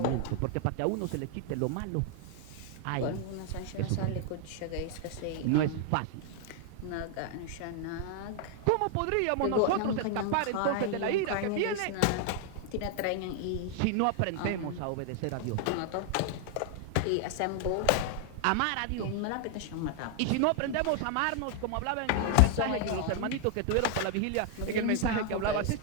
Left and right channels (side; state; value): both; different; correlation 0.00